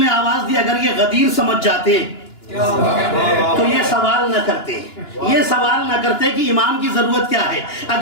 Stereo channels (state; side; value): late; right; 2.9 ms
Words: آواز دی اگر یہ غدیر سمجھ جاتے تو یہ سوال نہ کرتے، یہ سوال نہ کرتے کہ امام کی ضرورت کیا ہے۔